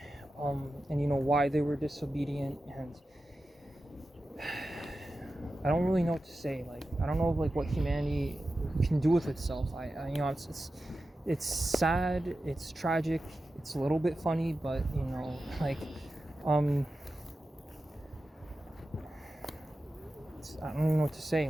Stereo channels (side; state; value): both; normal; correlation 0.92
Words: and why they were disobedient. And I don't really know what to say. Like, I don't know like what humanity can do with itself. It's sad, it's tragic, it's a little bit funny, but I don't even know what to say.